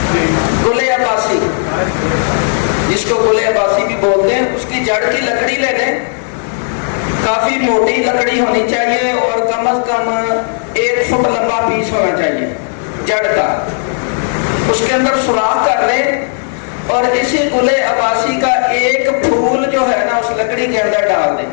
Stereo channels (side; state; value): right; silent; digital silence